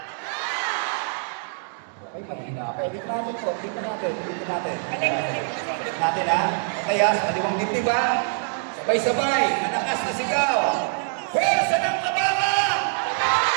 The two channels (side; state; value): left; silent; digital silence